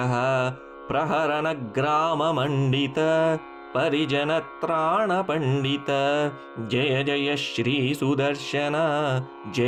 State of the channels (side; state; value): both; identical; correlation 1.00